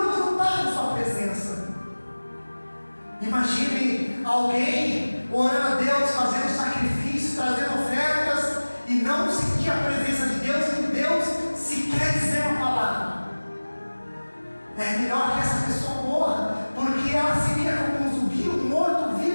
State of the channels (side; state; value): both; inverted; correlation -1.00